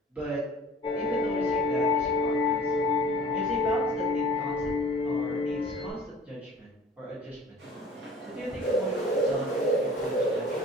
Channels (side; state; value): both; normal; correlation 0.46